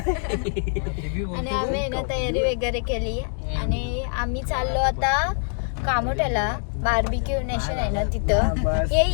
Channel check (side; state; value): right; silent; 62 dB below the other